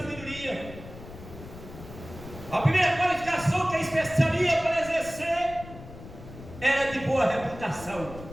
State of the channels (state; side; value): noise; left; rumble, 15 dB below the sound